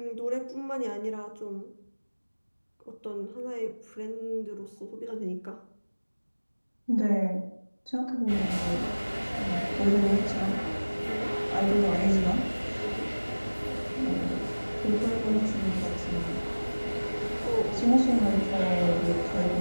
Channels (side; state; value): both; inverted; correlation -1.00